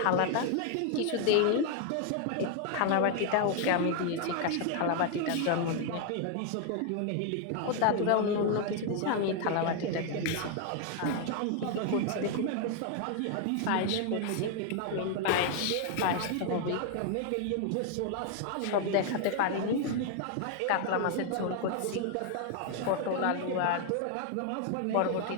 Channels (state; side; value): different; both; correlation 0.00